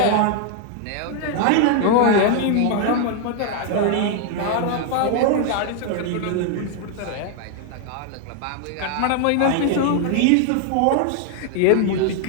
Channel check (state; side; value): different; both; correlation 0.00